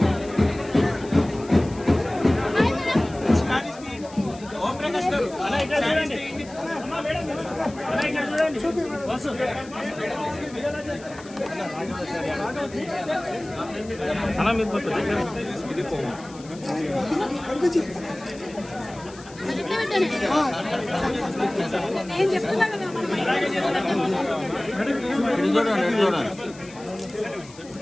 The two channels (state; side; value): noise; left; hiss, 21 dB below the sound